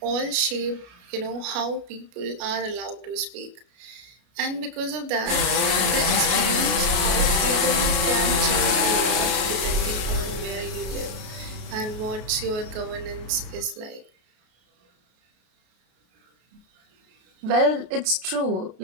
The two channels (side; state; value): left; late; 33 ms